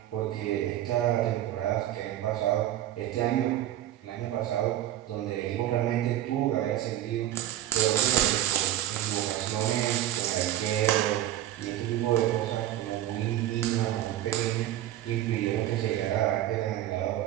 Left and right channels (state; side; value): quieter; left; 13.0 dB